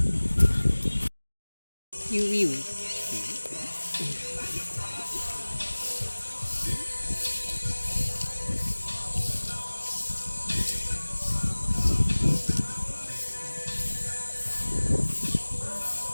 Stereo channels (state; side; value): inverted; both; correlation -1.00